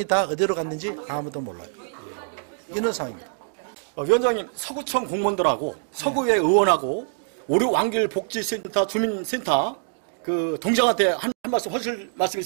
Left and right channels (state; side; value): silent; left; digital silence